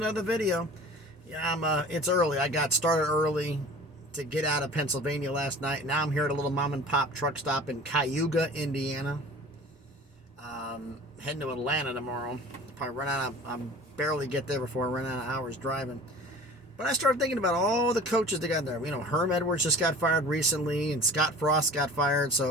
video. Yeah, it's early. I got started early to get out of Pennsylvania last night. Now I'm here at a little mom and pop truck stop in Cayuga, Indiana. Heading to Atlanta tomorrow. Probably run out of, I'm barely get there before I run out of hours driving. But I started thinking about all the coaches they got there. You know, Herm Edwards just got fired recently and Scott Frost got fired.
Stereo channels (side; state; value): both; normal; correlation 0.43